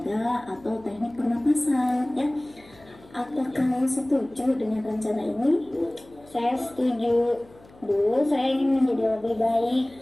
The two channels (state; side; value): noise; left; hum, 25 dB below the sound